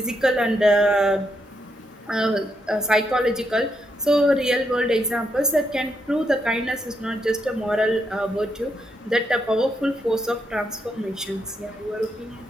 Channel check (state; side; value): normal; both; correlation 0.80